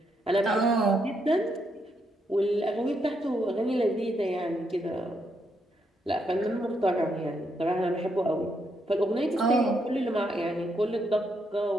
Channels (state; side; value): normal; both; correlation 0.78